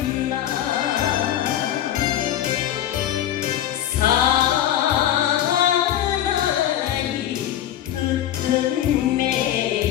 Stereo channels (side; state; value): right; quieter; 11.7 dB